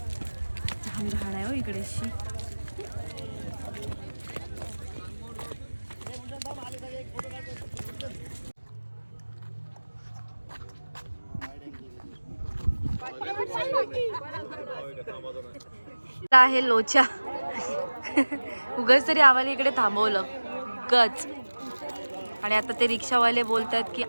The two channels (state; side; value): inverted; both; correlation -1.00